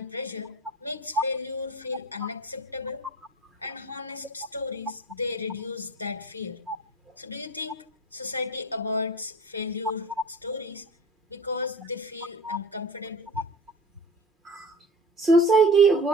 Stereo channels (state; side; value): normal; both; correlation 0.37